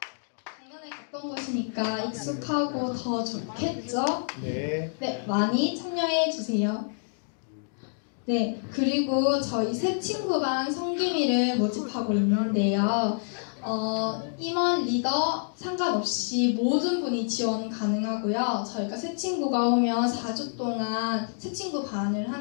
작년에 갔던 곳이니까 익숙하고 더 좋겠죠? 네, 많이 참여해 주세요. 네, 그리고 저희 새 친구반 성기미를 모집하고 있는데요. 임원, 리더 상관없이 모든 분이 지원 가능하고요. 저희가 새 친구가 오면 4주 동안 새 친구 반을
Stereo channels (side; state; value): right; silent; digital silence